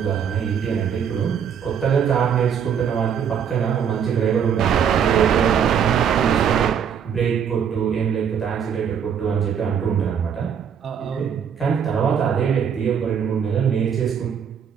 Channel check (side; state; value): left; quieter; 7.8 dB